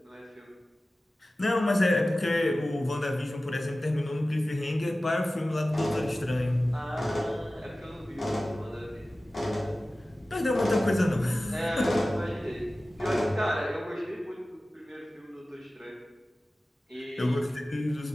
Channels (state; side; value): normal; both; correlation 0.96